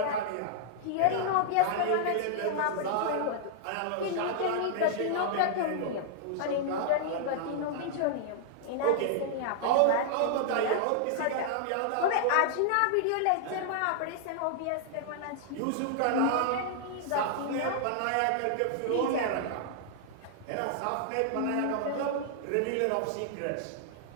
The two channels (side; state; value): both; different; correlation -0.01